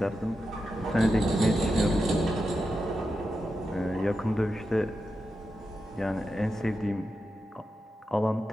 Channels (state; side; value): normal; both; correlation 0.89